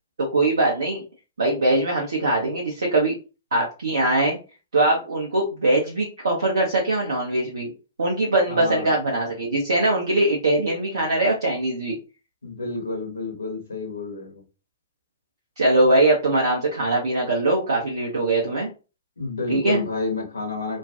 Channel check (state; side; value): inverted; both; correlation -0.55